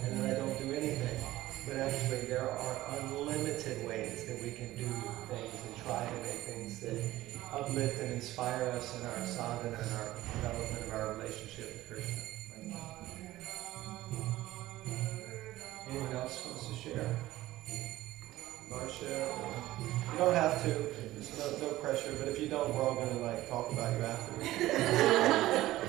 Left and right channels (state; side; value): quieter; left; 16.1 dB